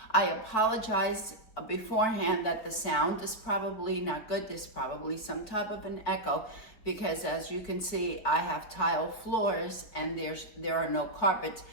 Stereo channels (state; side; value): late; right; 4.7 ms